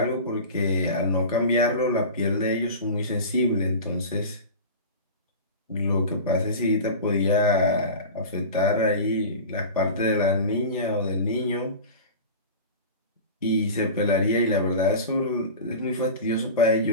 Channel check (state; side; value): inverted; both; correlation -0.32